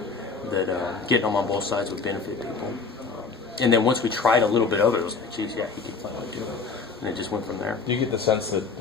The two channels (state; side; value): quieter; right; 4.7 dB